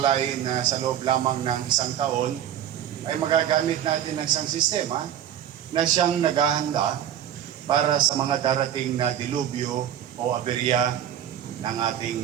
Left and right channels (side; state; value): left; quieter; 10.4 dB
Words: na sa loob lamang ng isang taon ay magagamit natin ng isang sistema na siyang naghahanda para sa mga darating na dilubyo o aberya ng